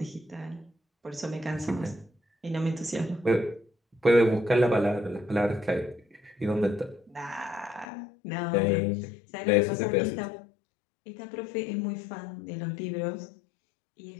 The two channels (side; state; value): right; drops out; at 7.9 s